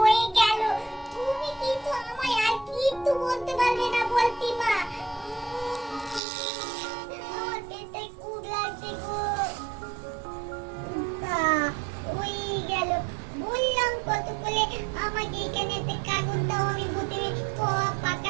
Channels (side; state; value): left; drops out; at 6.2 s